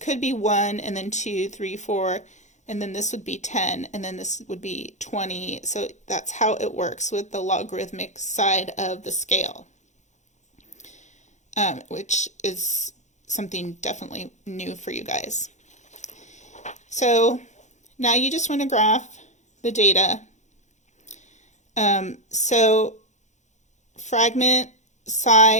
be 1, and then 2, 3, 4, and then this would be 10, and then this would be 20. So that's how it works with the logarithmic side of the scale, which is something definitely new for you guys. So now you just want to graph the data. So fragment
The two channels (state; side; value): late; right; 0.34 ms